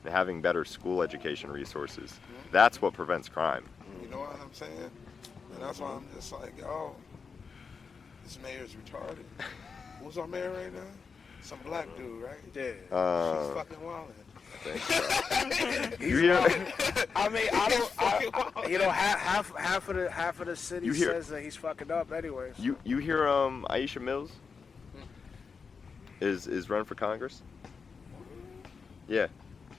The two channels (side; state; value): right; quieter; 5.3 dB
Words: and having better school education resources. That's what prevents crime. You know what I'm saying? And that's why I'm just like, yo, this mayor's retarded. Who's our mayor right now? Some black dude, right? Yeah. She's fucking wildin'. You hear? I mean, half of the city says that he's fucking up anyways. You hear Aisha Mills is running for Congress? Yeah.